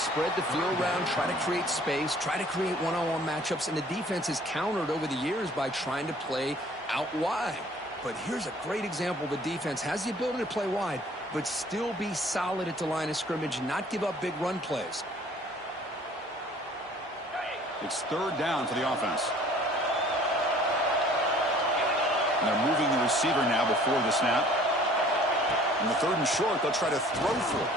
the field around, try to create space, try to create one-on-one matchups, and the defense is countered over the years by trying to play out wide. But here's a great example. The defense has the ability to play wide, but still be solid at the line of scrimmage, not give up big run plays. It's 3rd down for the offense. And they're moving the receiver now before the snap. And the 3rd and short, they'll try to throw for it.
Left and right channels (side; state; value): both; normal; correlation 0.53